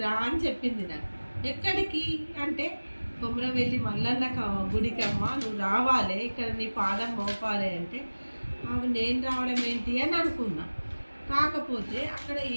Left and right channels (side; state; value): both; inverted; correlation -1.00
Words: రా అని చెప్పింది నాకు. ఎక్కడికి అంటే కొమరవెల్లి మల్లన్న గుడికి అమ్మ నువ్వు రావాలి, ఇక్కడ నీ పాదం మోపాలి అంటే అవి నేను రావడం ఏంటి అని అనుకున్నా. కాకపోతే అక్కడ